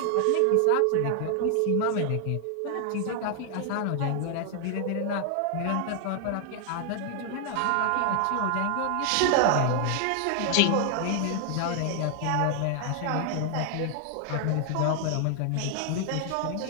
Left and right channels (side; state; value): both; different; correlation 0.00